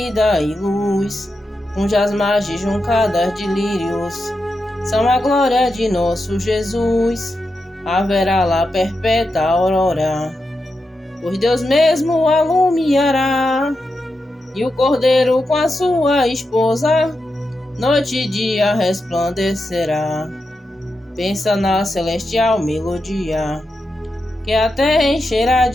e luz, cujas margens juncadas de lírios são a glória de nosso Jesus. Haverá lá perpétua aurora, pois Deus mesmo alumiará, e o Cordeiro com a sua esposa noite e dia resplandecerá. Pensa na celestial melodia que a terra encherá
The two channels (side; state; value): both; normal; correlation 0.88